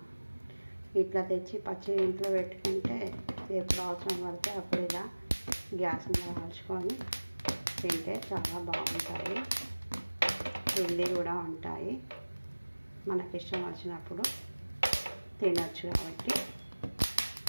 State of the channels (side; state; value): both; inverted; correlation -1.00